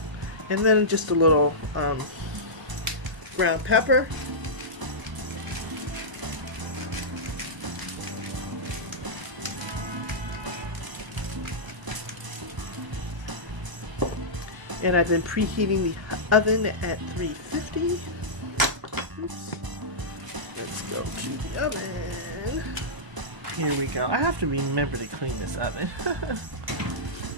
And then just a little ground pepper. And I've been preheating the oven at 350. Oops. Let's go to the oven. Here we go. I have to remember to clean this oven.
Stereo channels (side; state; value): left; late; 1.0 ms